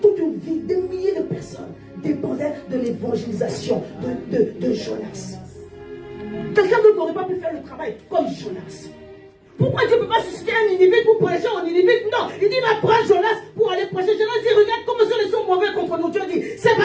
Toute une vie, des milliers de personnes dépendaient de l'évangélisation de Jonas. Quelqu'un d'autre n'aurait pas pu faire le travail comme Jonas. Pourquoi Dieu ne peut pas susciter un Ninive pour prêcher en Ninive? Non, il dit va prendre Jonas pour aller prêcher. Jonas dit regarde comment ils sont mauvais contre nous. Dieu dit c'est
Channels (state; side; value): identical; both; correlation 1.00